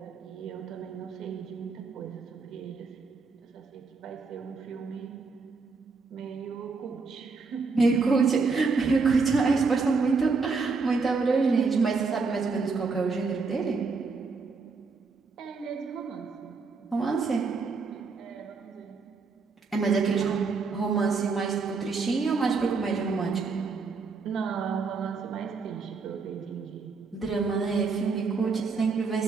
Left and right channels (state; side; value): quieter; left; 4.5 dB